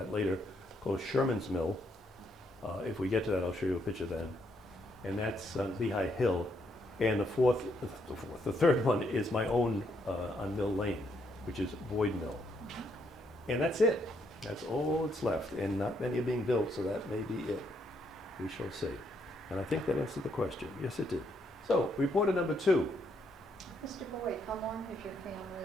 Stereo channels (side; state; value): both; normal; correlation 0.74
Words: later, called Sherman's Mill. If we get to that, I'll show you a picture then. And that's on Lehigh Hill. And the third one is my own on Mill Lane, which is Boyd Mill. And that's it. That's all that's left. And not many are being built, so that may be it. We shall see. And I think that answered the question. Yes, it did. So, reporter number 2. Mr. Boyd, how long has your